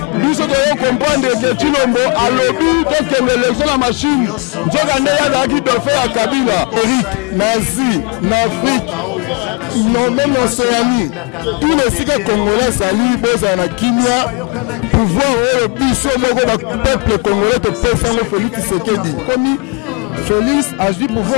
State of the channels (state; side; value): quieter; right; 33.4 dB